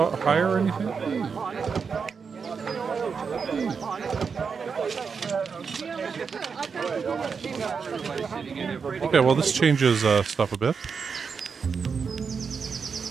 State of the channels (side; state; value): left; quieter; 5.7 dB